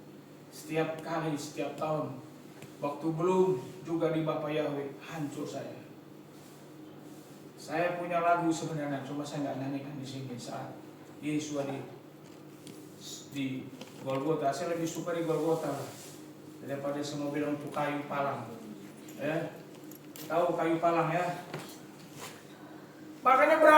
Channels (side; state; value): both; identical; correlation 1.00